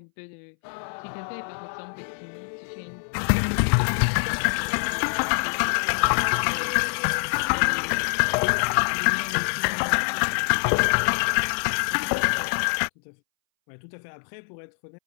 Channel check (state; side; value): silent; right; 62 dB below the other